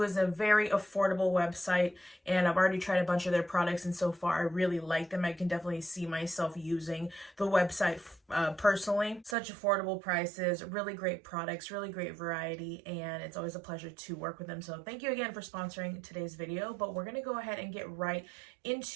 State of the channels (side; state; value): left; drops out; at 9.3 s